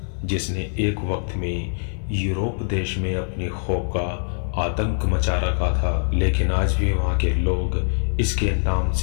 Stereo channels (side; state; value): right; silent; 63 dB below the other